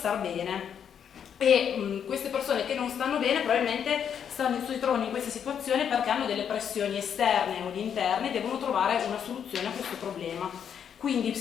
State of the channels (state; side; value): quieter; right; 8.2 dB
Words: bene, e queste persone che non stanno bene probabilmente si trovano in questa situazione perché hanno delle pressioni esterne o interne e devono trovare una soluzione a questo problema. Quindi